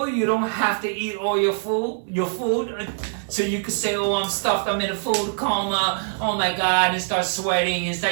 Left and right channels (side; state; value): left; silent; digital silence